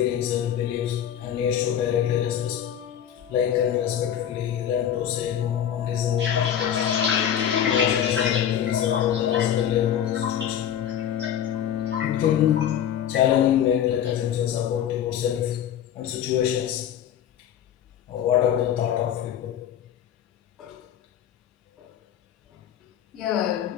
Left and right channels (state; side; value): quieter; right; 9.8 dB